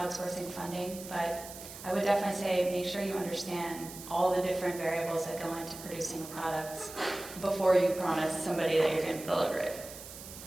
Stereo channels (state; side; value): noise; right; hiss, 13 dB below the sound